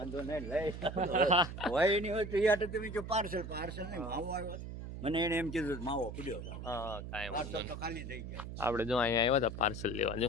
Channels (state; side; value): noise; right; hum, 8 dB below the sound